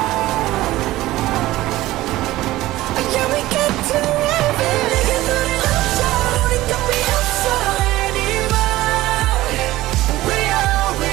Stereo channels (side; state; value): left; quieter; 16.8 dB